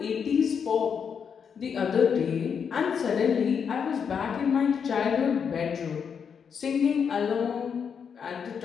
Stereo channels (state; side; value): quieter; right; 6.9 dB